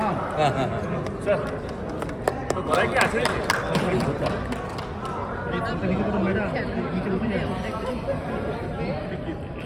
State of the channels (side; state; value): both; identical; correlation 1.00